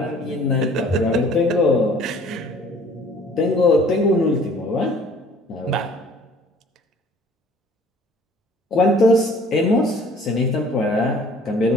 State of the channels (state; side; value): normal; both; correlation 0.53